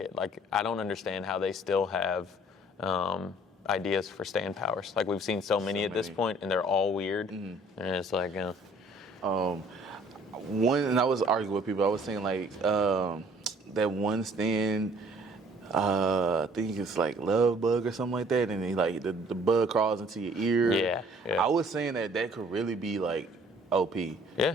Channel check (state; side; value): normal; both; correlation 0.57